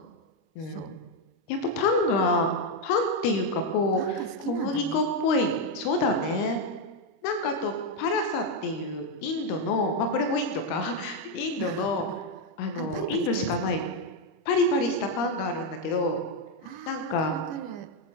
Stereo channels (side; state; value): right; late; 25 ms